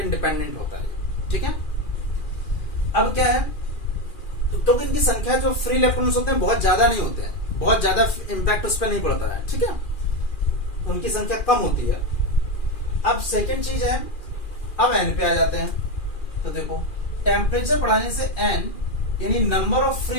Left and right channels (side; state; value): right; late; 2.4 ms